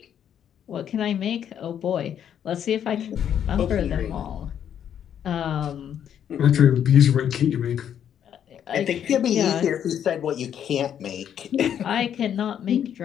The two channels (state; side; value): quieter; right; 9.3 dB